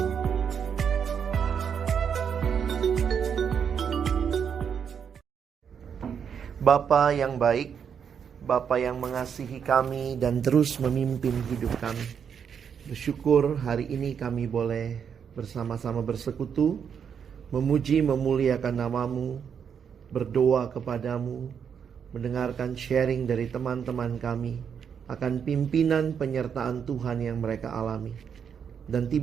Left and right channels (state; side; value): quieter; left; 7.4 dB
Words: Bapa yang baik, Bapa yang mengasihi kami dan terus memimpin hidup kami. Bersyukur hari ini kami boleh bersama-sama bersekutu, memuji memuliakan nama-Mu, berdoa kepadamu, mendengarkan sharing dari teman-teman kami akan pimpinan penyertaan Tuhan yang mereka alami. Dan